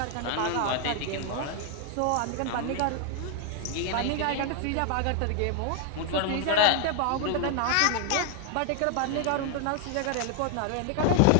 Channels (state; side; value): different; both; correlation 0.00